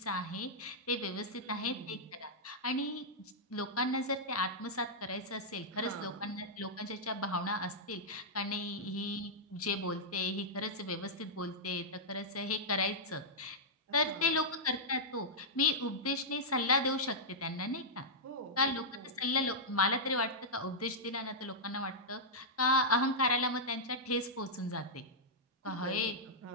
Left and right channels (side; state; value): both; normal; correlation -0.09